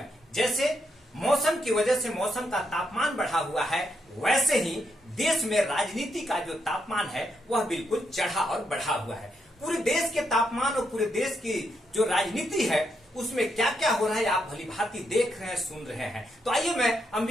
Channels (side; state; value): both; normal; correlation 0.80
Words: जैसे मौसम की वजह से मौसम का तापमान बढ़ा हुआ है, वैसे ही देश में राजनीति का जो तापमान है वह बिल्कुल चढ़ा और बढ़ा हुआ है। पूरे देश के तापमान और पूरे देश की जो राजनीति है उसमें क्या क्या हो रहा है आप भली भांति देख रहे हैं, सुन रहे हैं। तो आइए मैं